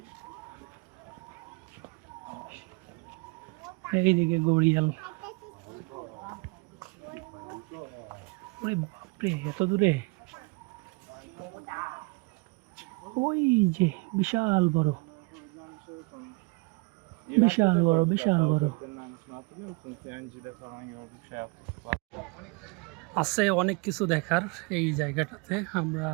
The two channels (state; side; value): quieter; left; 29.1 dB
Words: এইদিকে গড়িয়াল। ওরে বাপরে, এত দূরে! ওই যে বিশাল বড়, বিশাল বড়, বিশাল বড়। আছে অনেক কিছু দেখার এই জায়গাটাতে। আমরা